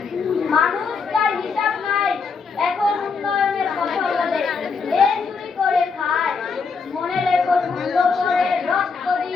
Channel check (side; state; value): right; quieter; 5.1 dB